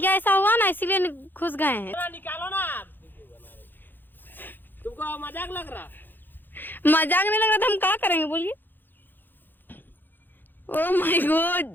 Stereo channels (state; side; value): late; right; 0.092 ms